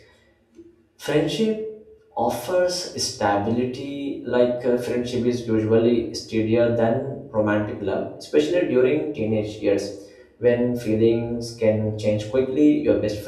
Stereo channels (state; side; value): identical; both; correlation 1.00